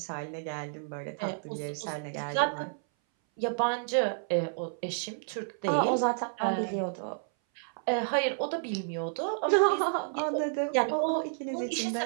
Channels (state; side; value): silent; left; 57 dB below the other